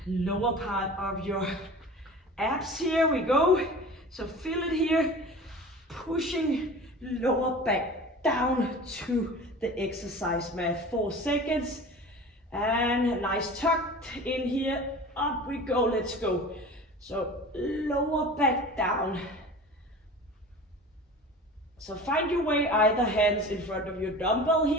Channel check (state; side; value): normal; both; correlation 0.38